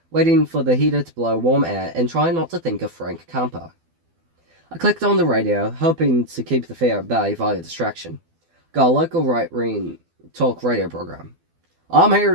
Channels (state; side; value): late; left; 12 ms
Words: waiting for the heater to blow warm air and trying not to think of Frank Campo. I clicked on the radio, hoping to keep the fear at bay via distraction. Got a local right-wing talk radio program. "I'm here